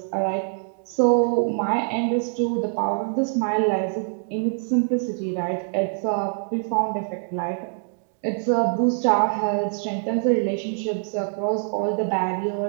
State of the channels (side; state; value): left; silent; 62 dB below the other